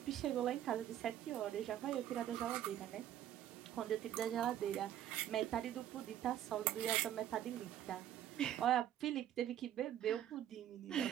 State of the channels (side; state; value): left; quieter; 11.3 dB